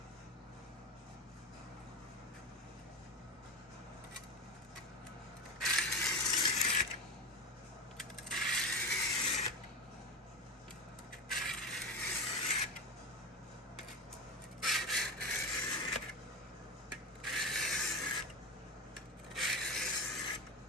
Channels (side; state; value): both; normal; correlation 0.21